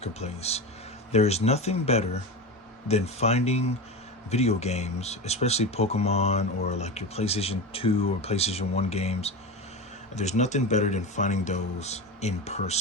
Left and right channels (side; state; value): both; normal; correlation 0.23